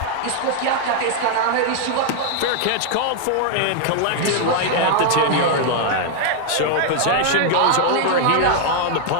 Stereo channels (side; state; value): both; different; correlation 0.00